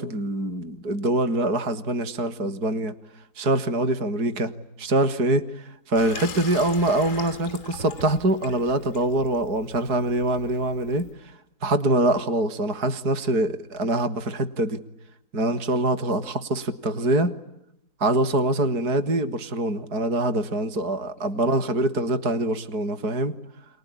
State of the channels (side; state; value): left; late; 4.6 ms